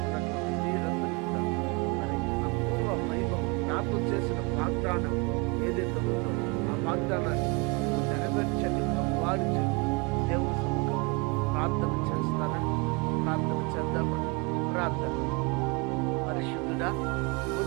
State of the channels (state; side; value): quieter; left; 29.9 dB